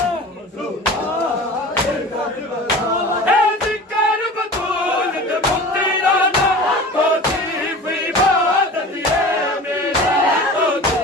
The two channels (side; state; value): both; normal; correlation 0.37